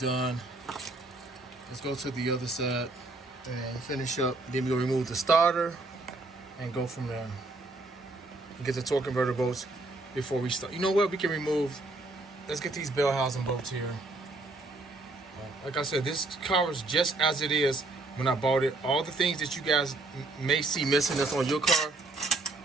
Let's go to the other side and finish up. Then we're gonna remove the starter and go from there. And get the torque converter bolts before we start. You know what? We can remove. Let's get these bell housing bolts here. Like I said, this car is just as it is when I bought it. All the things that you guys may see missing that's on your car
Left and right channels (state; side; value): quieter; left; 3.0 dB